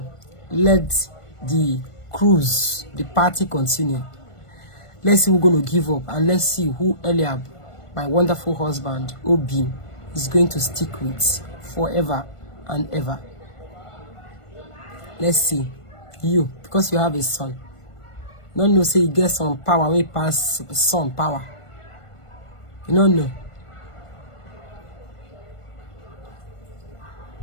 let the cruise, the party continue. Let's see who's going to give up, and let's see who Eliab, my wonderful husband, Obi, is going to stick with forever and ever. Let's see. You, because you have a son. Don't know, say you get some power, we pass son power. You don't know.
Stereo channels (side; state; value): right; late; 1.5 ms